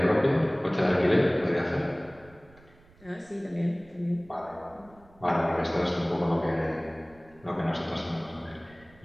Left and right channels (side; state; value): right; noise; rumble, 27 dB below the sound